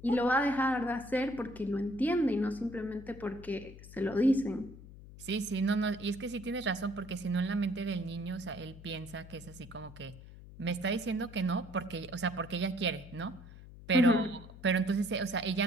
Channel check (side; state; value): left; noise; hum, 17 dB below the sound